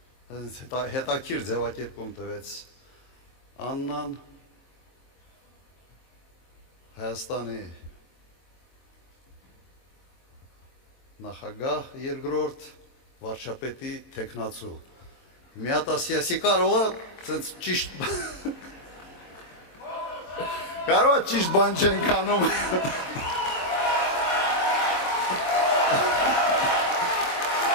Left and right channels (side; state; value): right; late; 23 ms